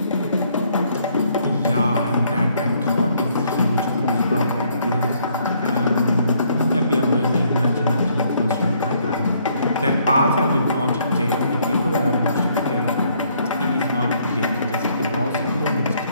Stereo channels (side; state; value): both; inverted; correlation -0.67